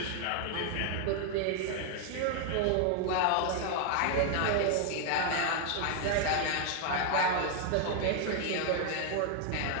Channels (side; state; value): both; different; correlation 0.00